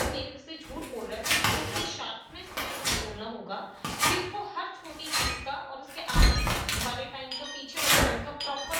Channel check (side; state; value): both; identical; correlation 1.00